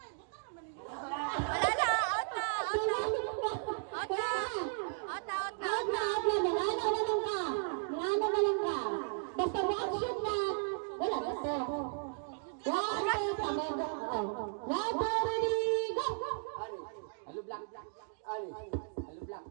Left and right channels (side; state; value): left; silent; digital silence